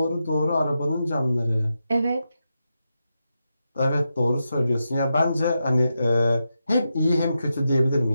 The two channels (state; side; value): inverted; both; correlation -0.87